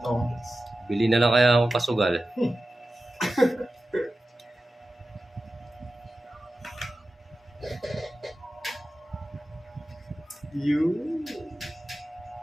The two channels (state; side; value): normal; both; correlation 0.94